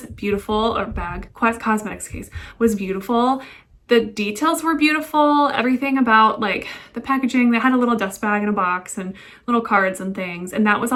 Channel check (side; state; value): both; identical; correlation 1.00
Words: beautiful, or bag, cosmetics case was beautiful. The details were beautiful. Everything about like the packaging, they had a little dust bag in a box and little cards and things, and that was